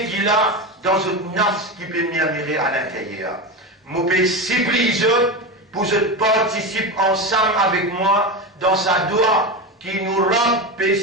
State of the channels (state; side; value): normal; both; correlation 0.20